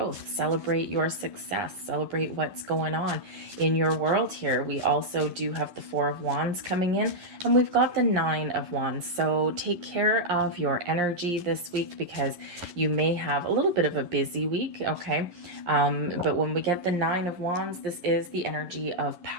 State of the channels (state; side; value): late; left; 11 ms